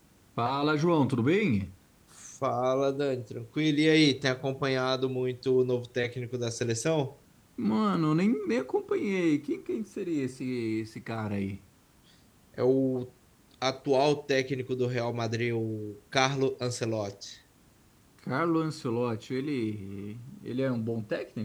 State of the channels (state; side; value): identical; both; correlation 1.00